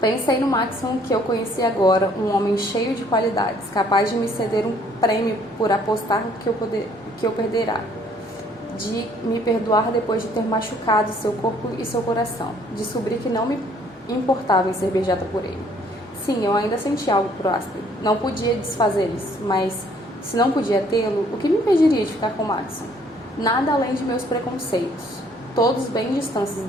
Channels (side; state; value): both; normal; correlation 0.61